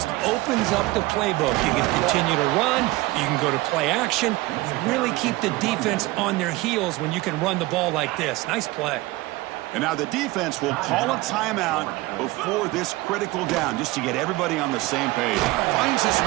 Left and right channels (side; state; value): left; quieter; 20.2 dB